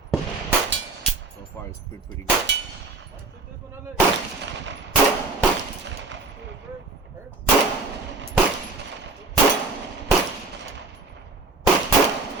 So far, it's been pretty good.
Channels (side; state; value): left; quieter; 3.6 dB